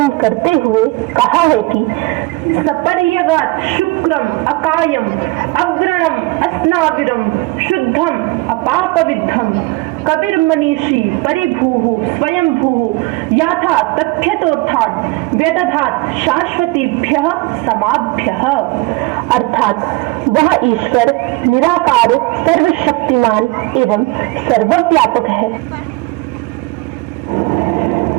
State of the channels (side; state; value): left; quieter; 22.5 dB